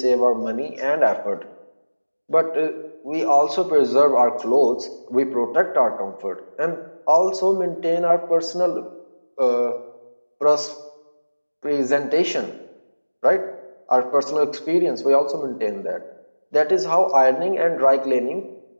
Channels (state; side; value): inverted; both; correlation -1.00